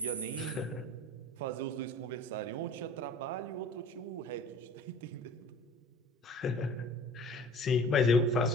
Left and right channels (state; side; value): normal; both; correlation 0.45